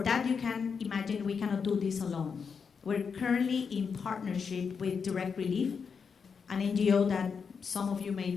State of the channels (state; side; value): quieter; right; 6.0 dB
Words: that, you can imagine we cannot do this alone. We're currently in partnership with Direct Relief, an NGO that some of you may